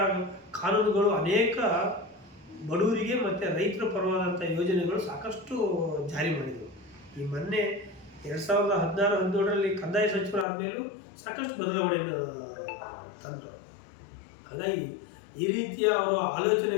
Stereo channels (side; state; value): right; drops out; at 10.5 s